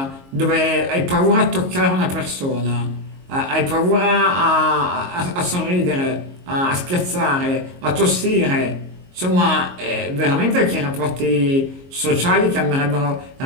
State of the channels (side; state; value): left; late; 22 ms